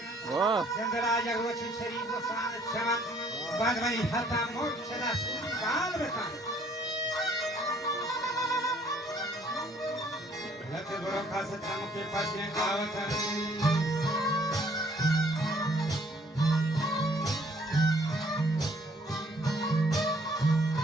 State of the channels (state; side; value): normal; both; correlation 0.61